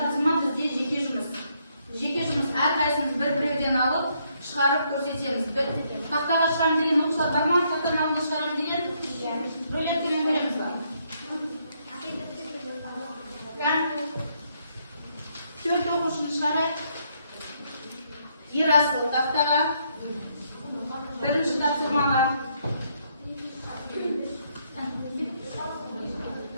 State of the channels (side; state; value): both; inverted; correlation -0.73